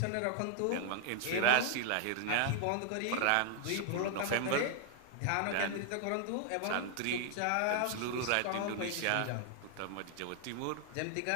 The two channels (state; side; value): different; both; correlation 0.00